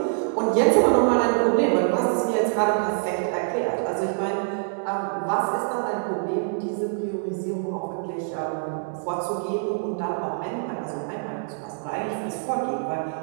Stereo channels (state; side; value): silent; left; digital silence